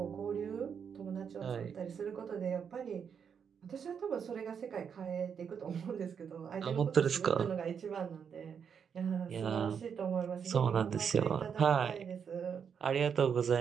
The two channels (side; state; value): left; quieter; 7.1 dB